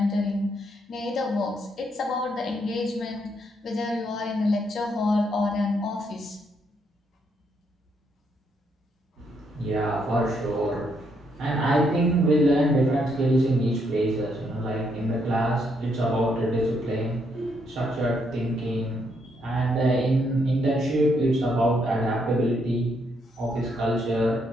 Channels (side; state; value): both; normal; correlation 0.75